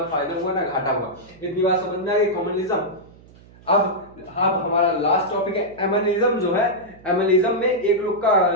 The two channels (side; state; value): right; noise; hum, 24 dB below the sound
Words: फायदा हुआ ना घाटा हुआ। इतनी बात समझ में आ गई, कॉमनलिज्म। अब हमारा लास्ट टॉपिक है एमनिज्म जो है। एमनिज्म में एक लोग का